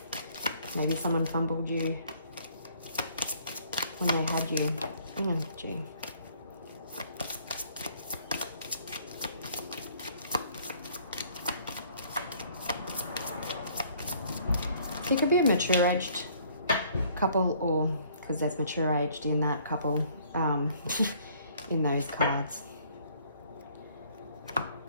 Maybe someone fumbled you when they had you. Oh, gee. It could be a mature-aged couple, or because there's mature-aged in that couple in those cards.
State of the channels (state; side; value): inverted; both; correlation -0.60